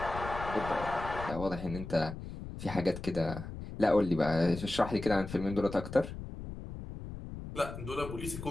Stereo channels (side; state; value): left; noise; rumble, 9 dB below the sound